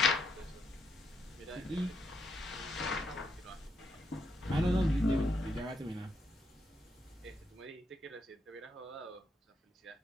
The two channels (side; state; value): both; normal; correlation 0.78